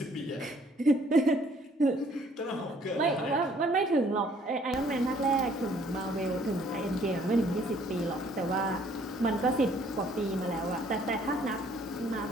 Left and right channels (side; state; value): both; normal; correlation 0.61